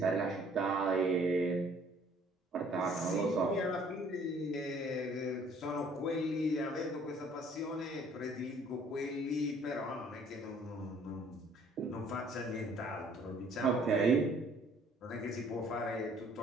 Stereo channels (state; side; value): normal; both; correlation 0.58